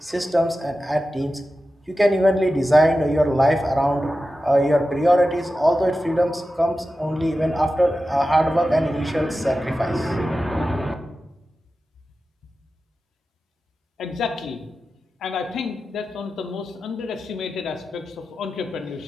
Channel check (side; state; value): both; normal; correlation 0.93